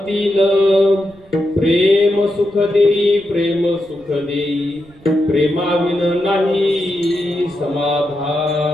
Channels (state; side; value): noise; right; rumble, 26 dB below the sound